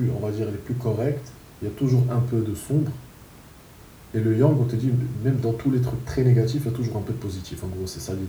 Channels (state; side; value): identical; both; correlation 1.00